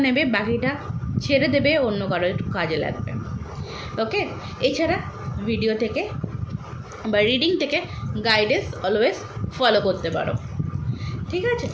নেবে, বাকিটা ছেড়ে দেবে, অন্য কারো একটু কাজে লাগবে। ওকে? এছাড়া ভিডিও থেকে বা রিডিং থেকে গাইডেন্স অলওয়েজ ফলো করতে পারো। ঠিক আছে,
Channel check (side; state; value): both; identical; correlation 1.00